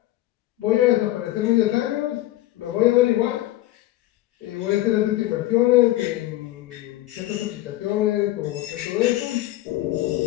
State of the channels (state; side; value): quieter; right; 15.9 dB